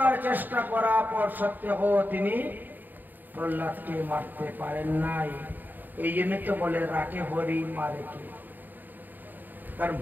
চেষ্টা করার পর সত্ত্বেও তিনি প্রহ্লাদকে মারতে পারেন নাই। এই জন্য তো বলে রাখে হরি মারে কে। কারণ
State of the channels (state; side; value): late; left; 0.089 ms